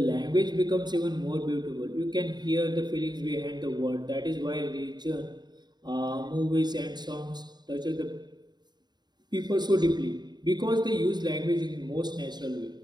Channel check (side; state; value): left; late; 0.20 ms